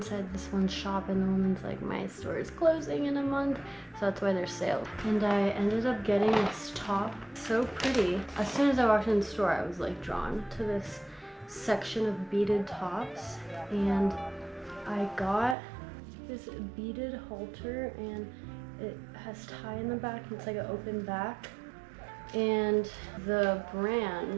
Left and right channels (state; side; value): drops out; left; at 15.6 s